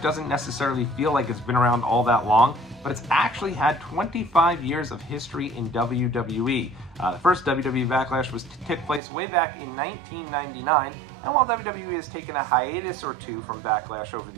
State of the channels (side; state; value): left; drops out; at 9.0 s